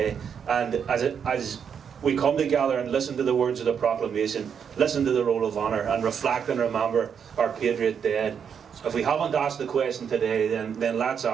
And as we come together and listen to the words of the proclamation, listen to the roll of honour, and reflect and remember our patriot dead. If we haven't asked the question today, then let's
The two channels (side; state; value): left; quieter; 7.4 dB